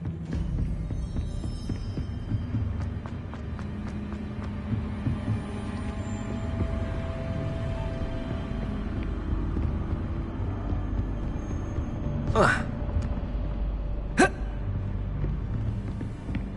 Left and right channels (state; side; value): identical; both; correlation 1.00